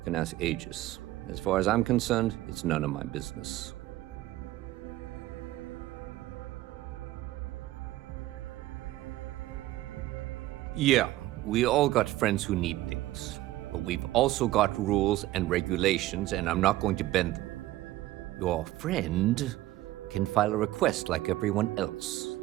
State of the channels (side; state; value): left; quieter; 16.2 dB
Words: can ask Aegis. As far as I'm concerned, it's none of my business. Yeah, we all got friends who need things. But we've also got rules and regulations, and I'm not going to bend them. Your friend can file a request like everyone else.